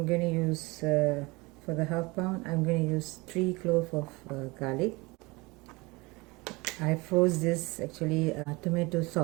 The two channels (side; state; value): left; quieter; 24.4 dB